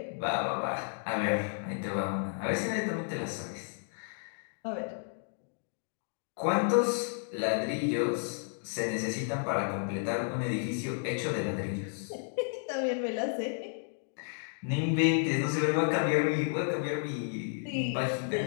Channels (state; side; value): silent; right; 56 dB below the other